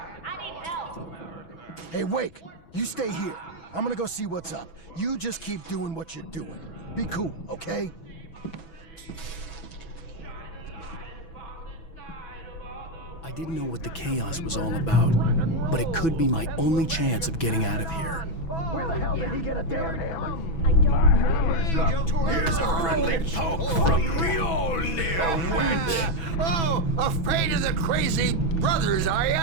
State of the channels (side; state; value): right; late; 6.1 ms